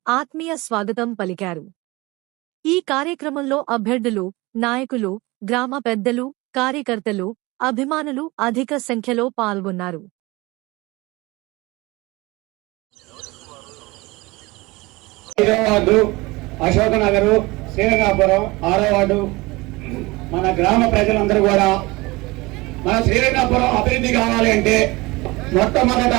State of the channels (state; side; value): quieter; left; 22.5 dB